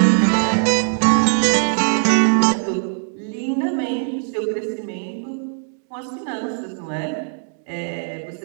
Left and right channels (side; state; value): left; silent; digital silence